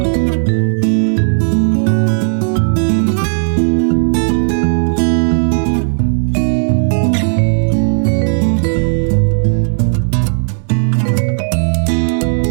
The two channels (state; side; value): silent; left; digital silence